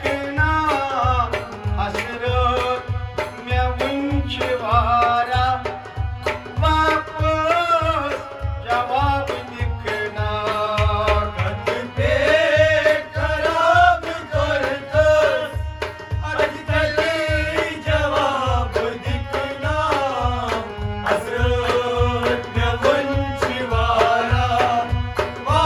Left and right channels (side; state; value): both; identical; correlation 1.00